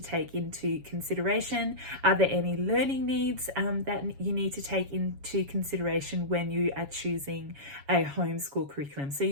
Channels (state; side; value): late; left; 7.2 ms